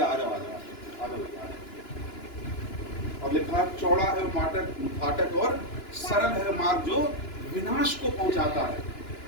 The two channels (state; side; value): late; right; 2.9 ms